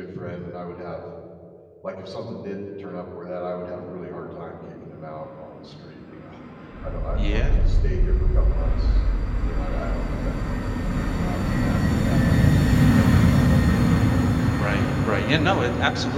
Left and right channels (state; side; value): identical; both; correlation 1.00